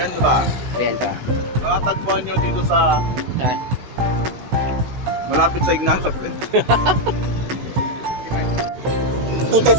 ba? Renta. Nakatagpuan nyo dito sa Saan? malapit sa Ignacio Place. Ito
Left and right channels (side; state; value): left; late; 16 ms